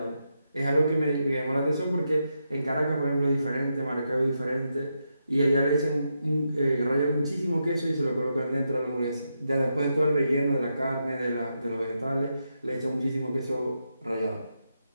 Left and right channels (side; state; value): both; inverted; correlation -0.84